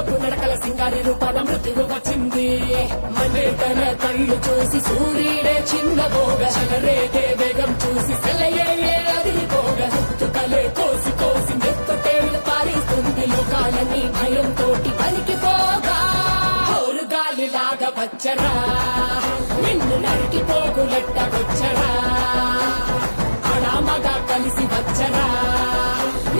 నడకల సింగారి రూపాల మృత్యువు వచ్చింది మనే తన కళ్ళు చూసి సూర్యుడే చిన్నబోగ చలరేగే వేగం చూసి సెలయే అదిరిపోగ తుకలే కోసి కోసి మెత్తటేళ్లు పారిస్తుంది లోకాలని భయం తోటి పలికిపోగా గాలిలాగా వచ్చరా నిన్ను నరికి పోగులెట్టగొచ్చరా అడామగా కలిసి వచ్చరా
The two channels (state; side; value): inverted; both; correlation -1.00